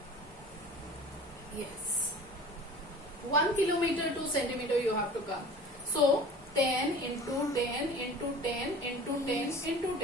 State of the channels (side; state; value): both; normal; correlation 0.41